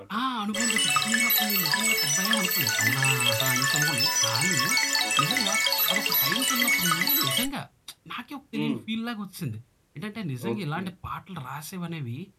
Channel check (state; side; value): identical; both; correlation 1.00